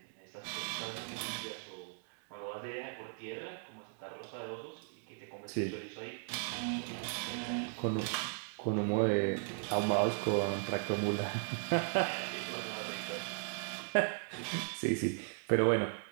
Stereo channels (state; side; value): silent; left; 53 dB below the other